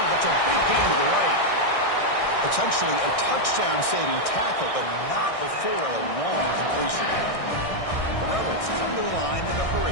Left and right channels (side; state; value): right; late; 1.6 ms